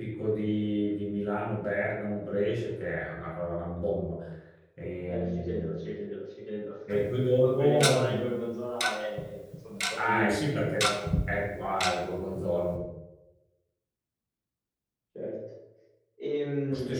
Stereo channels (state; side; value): identical; both; correlation 1.00